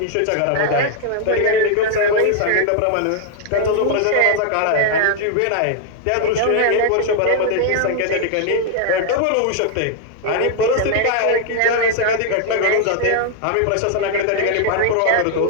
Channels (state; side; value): different; both; correlation 0.00